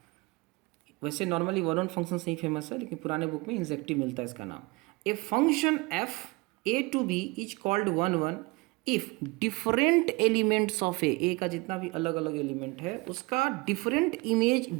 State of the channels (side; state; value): left; quieter; 25.4 dB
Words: वैसे normally one function से ही famous है, लेकिन पुराने बुक में इंजेक्टिव मिलता है इसका नाम. A function f A to B is called one if different elements of A का जितना भी अलग अलग एलिमेंट है उसका डिफरेंट इमेज